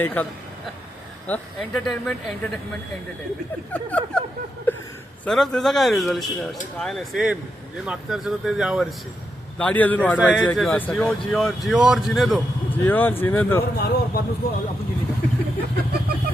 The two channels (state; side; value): normal; both; correlation 0.84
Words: Entertainment entertainment entertainment. सर त्याचा काय रिझोल्युशन आहे? काय नाही सेम जे मागच्या वर्षी होतं ते या वर्षी दाढी अजून वाढवायची आहे किंवा असं जिओ काय? जिओ जिओ और जिने दो. जिओ और जीने दो. मारो और बाद में उसको अपन जीने